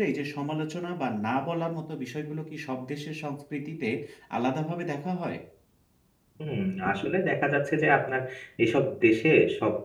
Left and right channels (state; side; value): identical; both; correlation 1.00